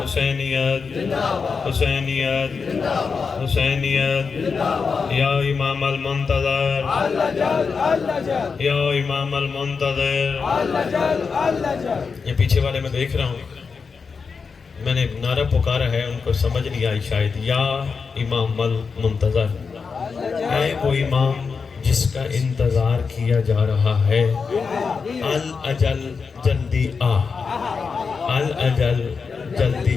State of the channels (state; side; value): quieter; right; 5.3 dB